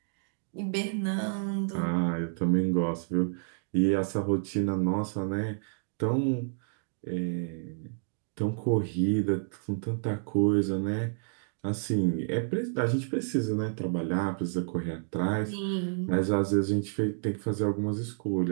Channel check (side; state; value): left; silent; digital silence